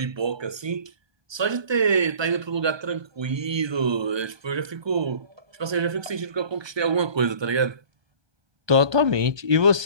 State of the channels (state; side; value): late; left; 1.2 ms